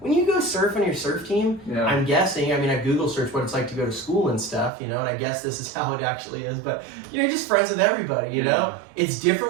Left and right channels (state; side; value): drops out; left; at 4.7 s